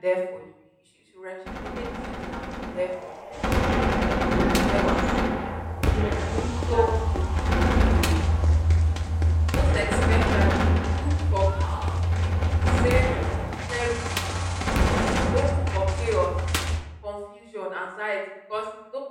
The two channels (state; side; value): identical; both; correlation 1.00